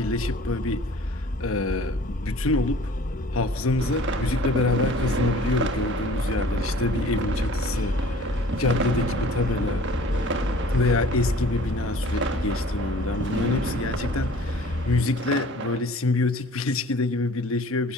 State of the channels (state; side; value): normal; both; correlation 0.48